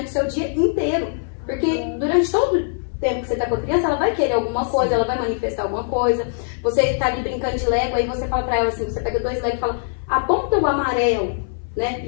o seu dia inteiro. Porque durante todo o tempo que você tá com a criança, ela vai querer alguma coisa, ela vai manifestar alguma coisa. Você tá ali brincando de Lego, aí você fala pra ela assim, você pega 2 Lego e fala, aponta o amarelo, né?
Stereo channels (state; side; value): silent; right; 58 dB below the other